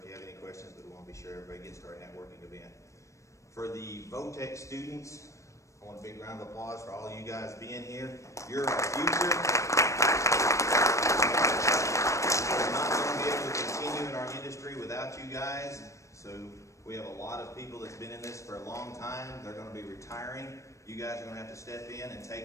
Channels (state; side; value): late; right; 0.15 ms